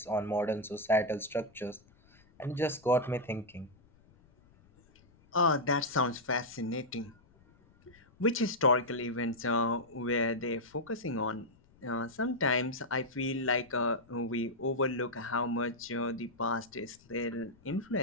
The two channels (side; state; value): left; noise; rumble, 29 dB below the sound